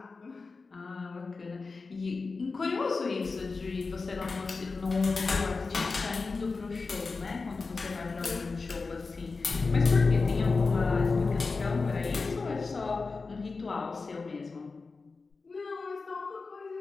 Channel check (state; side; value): quieter; right; 4.2 dB